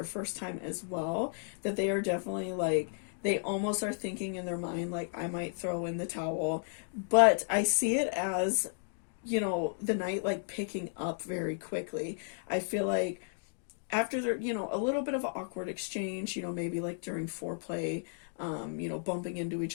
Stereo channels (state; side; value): silent; right; digital silence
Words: first time as well, that they are definitely like, they almost are thinking in their mind like, I might throw in the towel. But I see it as, you know, the night like picking up very quickly. I feel like after there, you know, a little bit of an awkward exchange, you know, maybe like during foreplay, you know, bumping into each